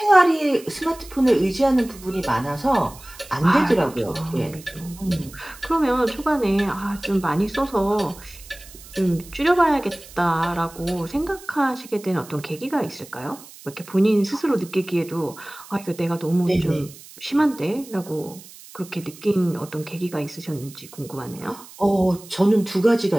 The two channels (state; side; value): noise; right; hiss, 19 dB below the sound